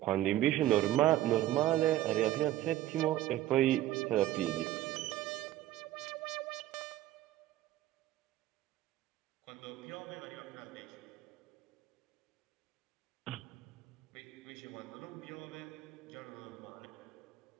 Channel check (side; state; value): left; quieter; 14.1 dB